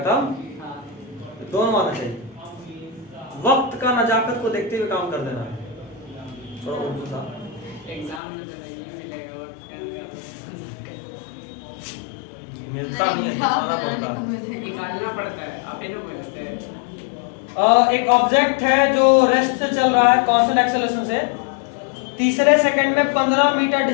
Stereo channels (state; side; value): drops out; right; at 8.2 s